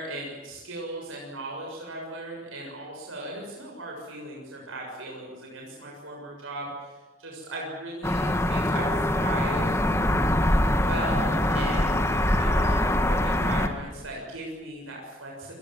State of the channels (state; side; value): normal; both; correlation 0.70